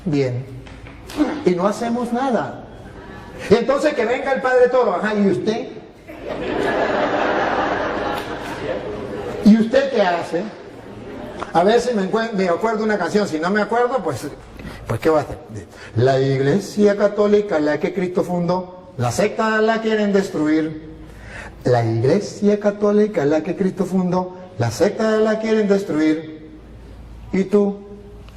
bien, y no hacemos nada. Y entonces que venga el Padre Toro, ajá, ¿y usted? ¿Y usted qué hace? A ver si me acuerdo una canción, si no me acuerdo, pues ¿qué va a hacer? La Iglesia Católica, la que Cristo fundó, la secta la quieren destruir. La Iglesia Católica, la que Cristo fundó, la secta la quieren destruir. ¿Y tú?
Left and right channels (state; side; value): identical; both; correlation 1.00